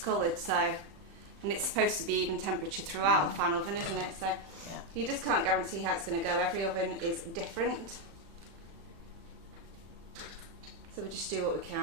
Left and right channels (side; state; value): left; late; 36 ms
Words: So, and it's supposed to be even temperature throughout a fan oven, isn't it? So Yeah. you just can't guarantee how it's going to go. Every oven is different. So we just do what we